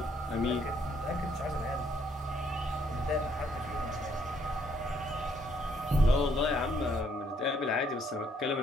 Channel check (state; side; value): normal; both; correlation 0.68